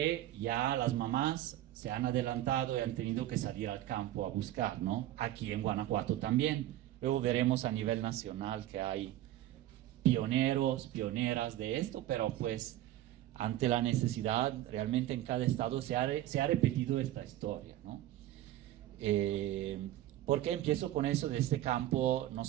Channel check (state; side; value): quieter; left; 13.9 dB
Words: ya las mamás se han adelantado y han tenido que salir al campo a buscar, ¿no? Aquí en Guanajuato también. Luego veremos a nivel nacional que hay pioneros, pioneras de esto, pero pues ante la necesidad, realmente en cada estado se ha repetido esta historia, ¿no? ¿Por qué empiezo con eso? De este campo